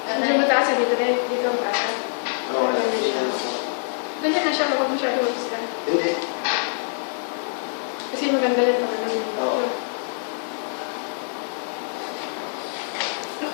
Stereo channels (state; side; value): silent; right; 62 dB below the other